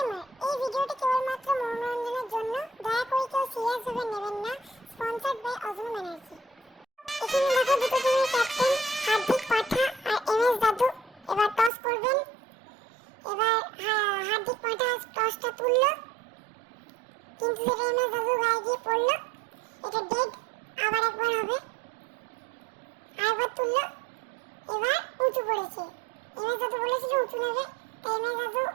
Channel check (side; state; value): left; drops out; at 11.7 s